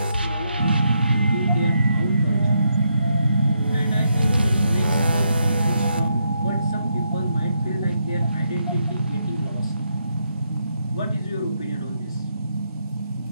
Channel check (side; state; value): both; inverted; correlation -0.80